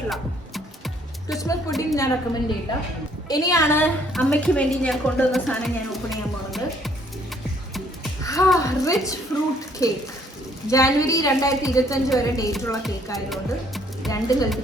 ക്രിസ്മസ് പുഡിംഗ് ഞാൻ റെക്കമെൻഡ് ചെയ്യില്ല. ഇനിയാണ് അമ്മയ്ക്ക് വേണ്ടി ഞാൻ കൊണ്ടുവന്ന സാധനം ഞാൻ ഓപ്പൺ ചെയ്യാൻ പോകുന്നത്. Rich fruit cake. ജാനുവരി 2025 വരെ ഡേറ്റുള്ള കേക്ക് ആയതുകൊണ്ട് രണ്ടും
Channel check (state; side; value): normal; both; correlation 0.63